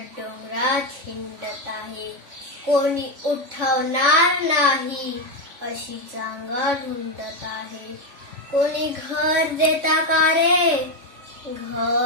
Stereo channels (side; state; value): left; late; 3.5 ms